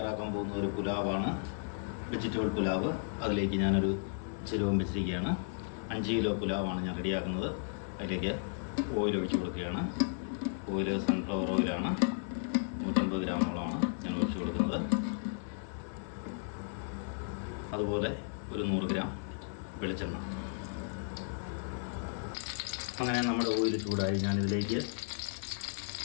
പോകുന്ന ഒരു പുലാവാണ്, വെജിറ്റബിൾ പുലാവ്. അതിലേക്ക് ഞാനൊരു ചിരവം വെച്ചിരിക്കുകയാണ്. 5 കിലോ പുലാവാണ് ഞാൻ റെഡിയാക്കുന്നത്. അതിലേക്ക് ഓയിൽ ഒഴിച്ച് കൊടുക്കുകയാണ്. ഓയിൽ സൺഫ്ലവർ ഓയിലാണ്, 150 ഗ്രാമോളമാണ് ഞാൻ ഒഴിച്ച് കൊടുക്കുന്നത്. അതുപോലെ ഒരു 100 ഗ്രാം വെളിച്ചെണ്ണ. അങ്ങനെ നമ്മുടെ ഓയിൽ ചൂടായി ഞാനിതിലേക്ക്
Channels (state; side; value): silent; right; 55 dB below the other